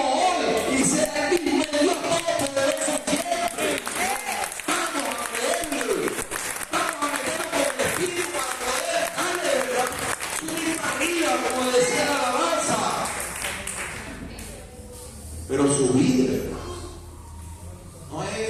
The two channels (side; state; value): both; identical; correlation 1.00